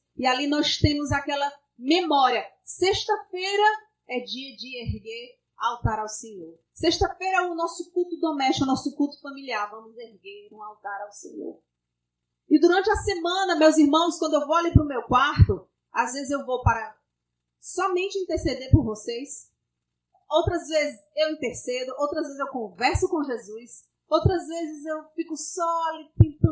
e ali nós temos aquela memória. Sexta-feira é dia de erguer altar ao Senhor. Sexta-feira é o nosso culto doméstico, o nosso culto familiar. Vamos erguer um altar ao Senhor. E durante a semana, meus irmãos, quando eu vou ali para o meu quarto, às vezes eu vou para somente interceder por vocês. Outras vezes eu intercedo, outras vezes eu converso com Jesus, outras vezes eu fico só ali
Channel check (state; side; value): identical; both; correlation 1.00